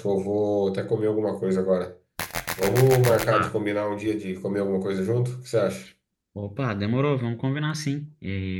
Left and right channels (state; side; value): identical; both; correlation 1.00